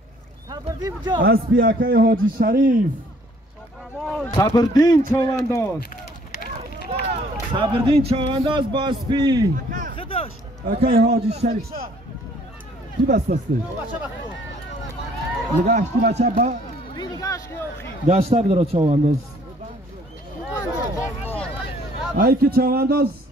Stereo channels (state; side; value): normal; both; correlation 0.60